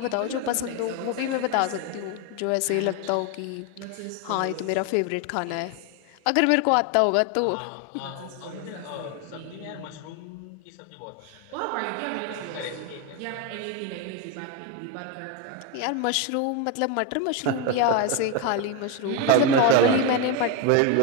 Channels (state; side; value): different; both; correlation 0.02